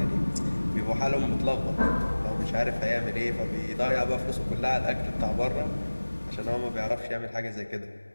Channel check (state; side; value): inverted; both; correlation -1.00